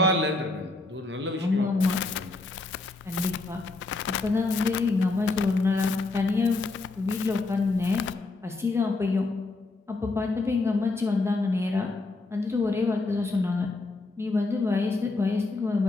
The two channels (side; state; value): right; quieter; 3.3 dB